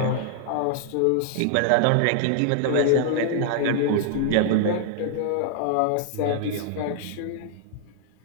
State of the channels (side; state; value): both; different; correlation 0.00